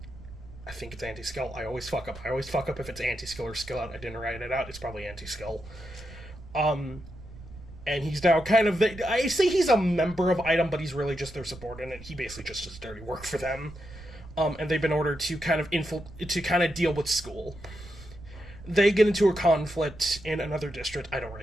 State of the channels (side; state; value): right; noise; rumble, 16 dB below the sound